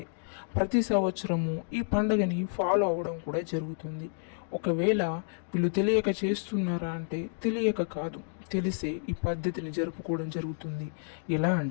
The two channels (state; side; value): silent; right; digital silence